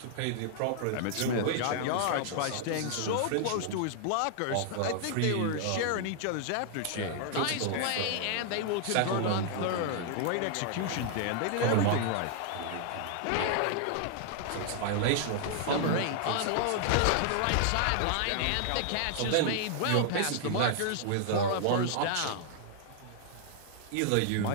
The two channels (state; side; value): different; both; correlation 0.00